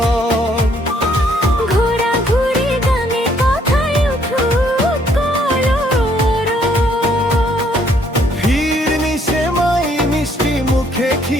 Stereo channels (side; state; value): both; normal; correlation 0.66